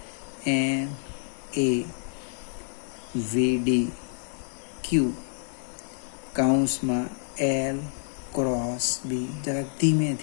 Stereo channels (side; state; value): right; silent; 59 dB below the other